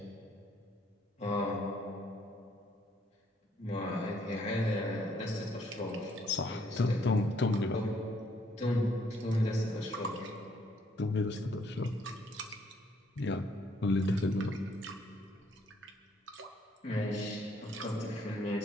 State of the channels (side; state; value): both; normal; correlation 0.67